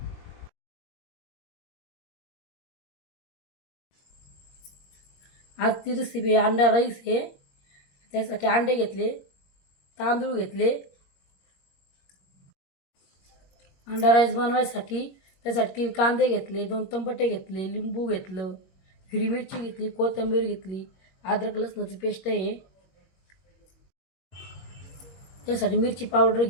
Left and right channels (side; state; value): right; late; 21 ms